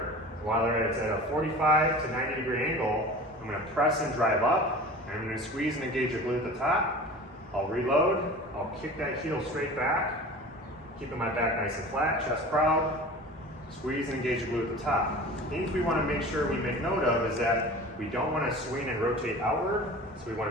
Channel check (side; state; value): both; normal; correlation 0.38